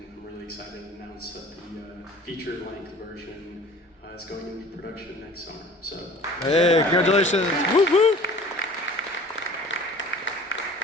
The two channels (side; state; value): both; normal; correlation 0.47